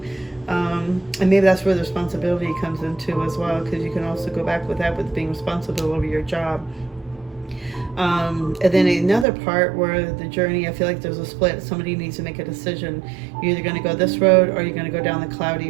And maybe that's where the responsibility comes into as well, because you can also go back with that, with being responsible over your job. And then another part where the journey, I feel like there's a split. Somebody needs to make a decision. You're either going to go this road, or you're going to go down the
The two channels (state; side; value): drops out; left; at 9.2 s